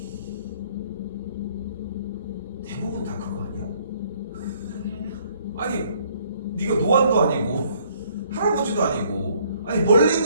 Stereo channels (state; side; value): inverted; both; correlation -0.64